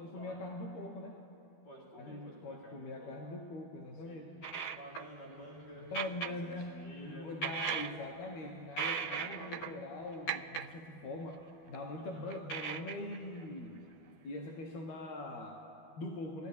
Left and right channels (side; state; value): right; late; 12 ms